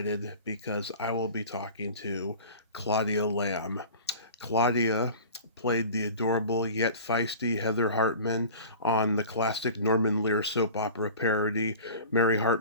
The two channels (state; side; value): inverted; both; correlation -0.40